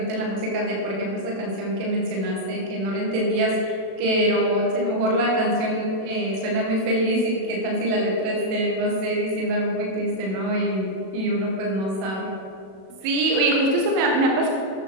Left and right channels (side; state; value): left; late; 37 ms